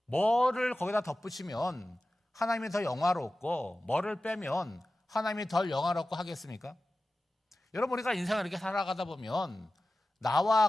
뭐를 거기다 덧붙이면 하나님이 더 영화롭고 뭐를 빼면 하나님이 덜 영화롭고 하겠습니까? 여러분, 우리가 인생을 이렇게 살아가다 보면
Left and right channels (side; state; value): both; normal; correlation 0.95